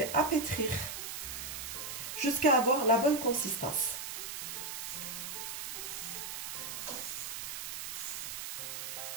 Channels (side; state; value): right; noise; hiss, 6 dB below the sound